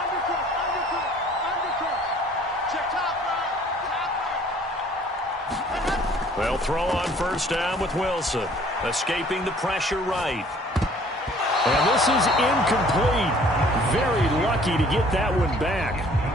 They'll throw on first down with Wilson, escaping the pressure right. And this is incomplete. Very lucky to get that one back.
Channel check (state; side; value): normal; both; correlation 0.55